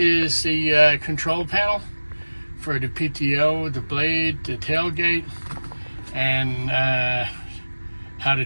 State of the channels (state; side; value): inverted; both; correlation -1.00